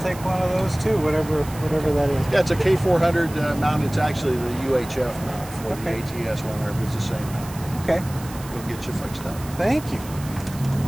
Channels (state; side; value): noise; right; hiss, 17 dB below the sound